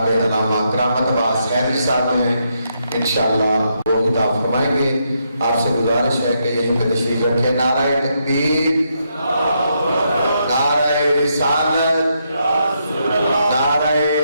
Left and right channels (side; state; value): both; inverted; correlation -0.79